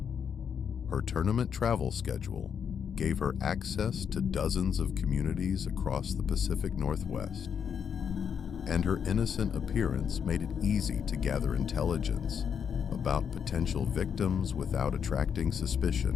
Her tournament travel schedule gave her access to dozens of communities across the Pacific Northwest, and her innocent appearance made it easy to gather intelligence about potential victims without attracting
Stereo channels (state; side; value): quieter; right; 7.4 dB